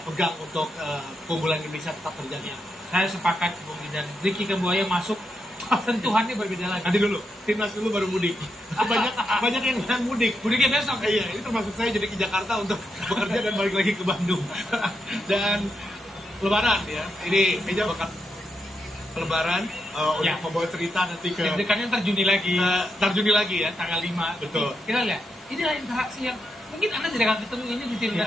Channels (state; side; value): normal; both; correlation 0.83